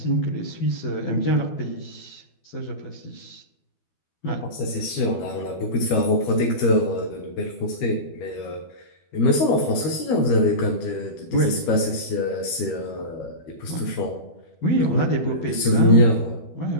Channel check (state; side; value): late; right; 12 ms